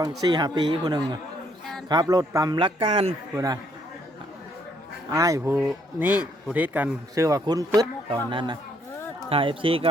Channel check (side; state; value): both; normal; correlation 0.69